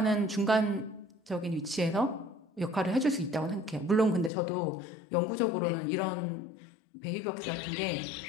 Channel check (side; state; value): right; drops out; at 4.3 s